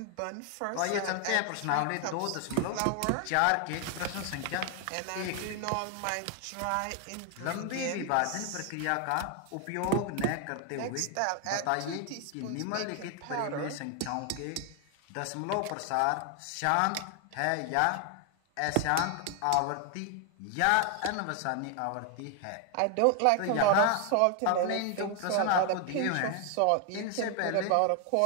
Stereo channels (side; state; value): both; different; correlation 0.00